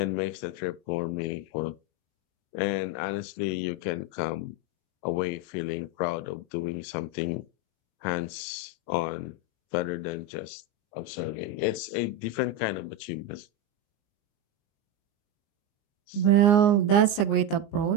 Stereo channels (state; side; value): late; right; 19 ms